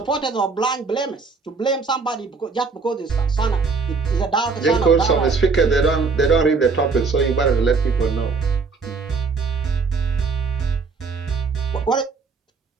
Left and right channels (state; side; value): quieter; left; 4.6 dB